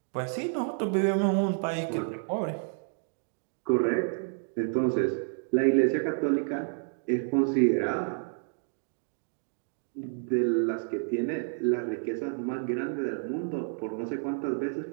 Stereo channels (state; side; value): silent; left; 58 dB below the other